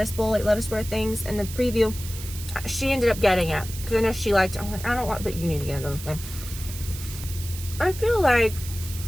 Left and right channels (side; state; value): right; noise; hiss, 12 dB below the sound